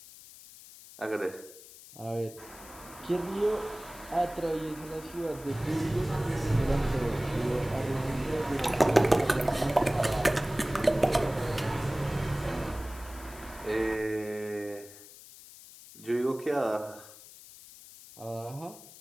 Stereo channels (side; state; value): left; noise; hiss, 18 dB below the sound